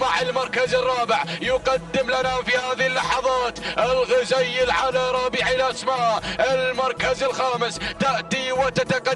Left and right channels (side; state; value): both; identical; correlation 1.00